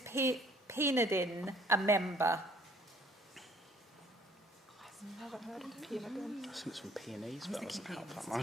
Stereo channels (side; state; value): both; normal; correlation 0.59